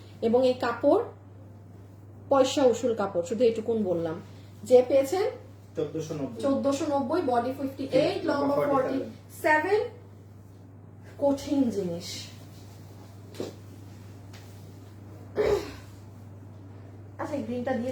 এবং এই কাপড় পয়সা উসুল কাপড়, শুধু এটুকুন বললাম। যে পেয়েছেন 1490, বডি 58 লম্বা 47, কঠিন জিনিস। আচ্ছা গ্রিনটা দিয়ে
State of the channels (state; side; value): identical; both; correlation 1.00